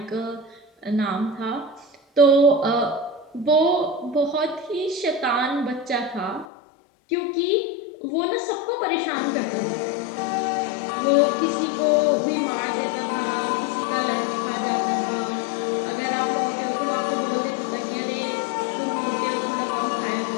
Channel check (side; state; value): right; drops out; at 6.5 s